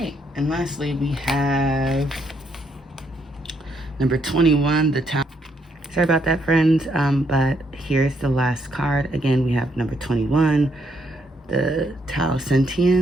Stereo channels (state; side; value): normal; both; correlation 0.74